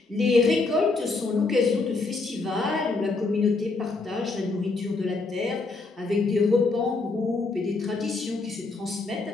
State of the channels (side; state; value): right; quieter; 3.7 dB